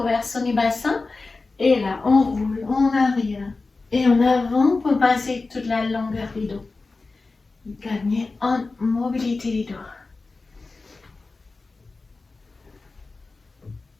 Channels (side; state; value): right; quieter; 3.7 dB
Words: du bassin. Et là, on roule en arrière et en avant pour passer toute la longueur du dos. Gagnez en mobilité du dos.